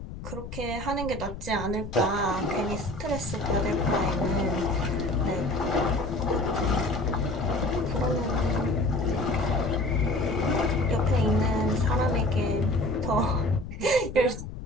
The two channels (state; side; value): noise; left; rumble, 10 dB below the sound